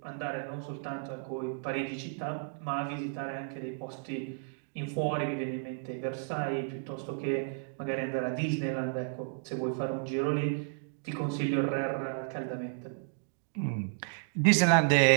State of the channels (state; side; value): silent; left; digital silence